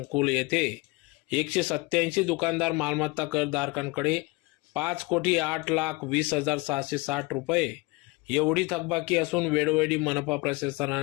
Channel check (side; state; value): right; quieter; 24.5 dB